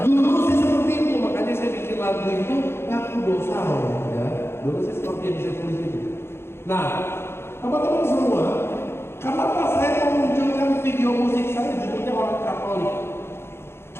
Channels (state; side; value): late; right; 0.12 ms